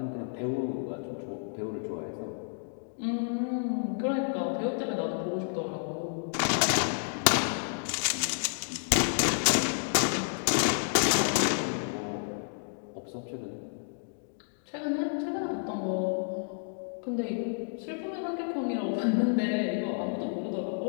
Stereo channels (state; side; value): silent; right; digital silence